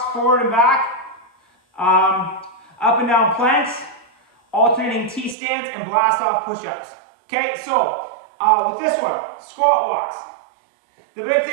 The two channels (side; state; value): left; drops out; at 5.4 s